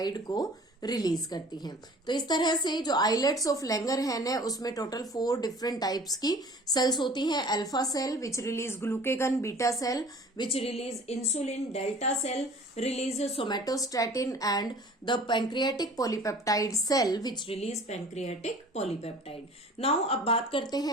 को रिलीज करती हैं। तो इस तरह से जो आइलेट्स ऑफ लैंगरहैन है उसमें टोटल 4 डिफरेंट टाइप्स की सेल्स होती हैं। Alpha cell which release glucagon, beta cell which release insulin, delta cell release somatostatin and the pancreatic polypeptide cell which release pancreatic polypeptide. Now अब बात करते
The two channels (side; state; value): both; normal; correlation 0.47